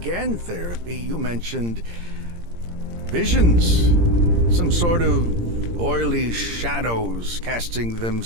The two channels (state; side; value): late; left; 17 ms